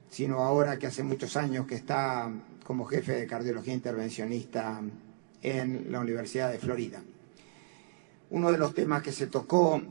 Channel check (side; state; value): left; silent; digital silence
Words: sino ahora que hace muchos años que está como jefe de cardiología intervencionista en la Universidad de Florida. Uno de los temas que se tocó